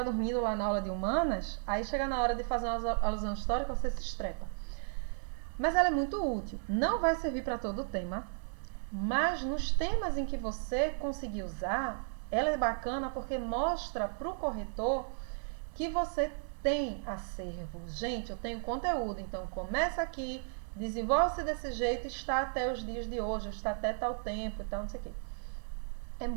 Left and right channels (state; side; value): silent; left; digital silence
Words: dormindo lá na aula de humanas, aí chega na hora de fazer uma alusão histórica, você se estrepa. Mas ela é muito útil. Não vai servir para todo o tema, mas nos temas em que você conseguir usar, ela é bacana porque mostra para o corretor que você tem acervo. Gente, eu tenho conteúdo, então começa aqui, desenvolve-se desse jeito, está até os dias de hoje, está até tal tempo e tal, não sei o quê. É